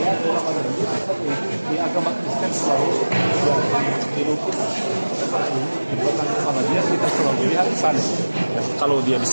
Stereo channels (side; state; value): both; inverted; correlation -1.00